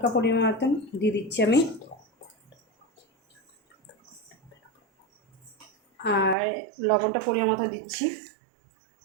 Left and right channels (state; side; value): drops out; left; at 6.4 s